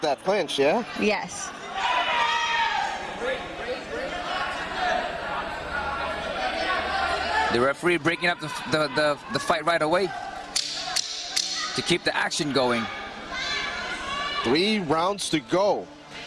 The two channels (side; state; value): both; identical; correlation 1.00